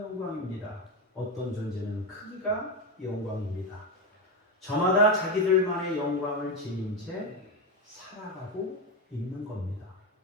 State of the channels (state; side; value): normal; both; correlation 0.13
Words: 어떤 존재는 크기가 영광입니다. 저마다 자기들만의 영광을 지닌 채 살아가고 있는 겁니다.